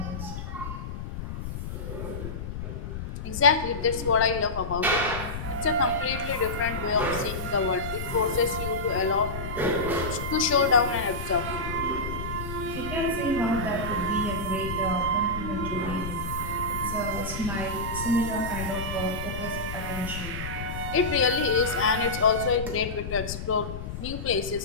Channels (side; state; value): left; noise; rumble, 7 dB below the sound